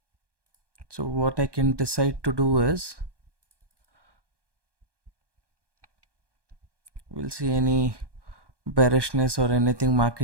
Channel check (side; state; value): left; late; 1.1 ms